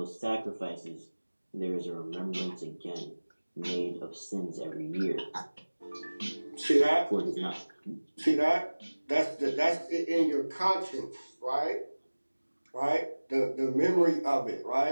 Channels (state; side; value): inverted; both; correlation -1.00